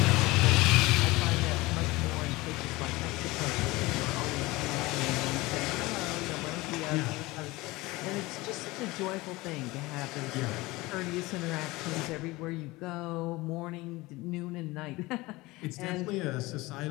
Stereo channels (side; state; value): right; quieter; 21.3 dB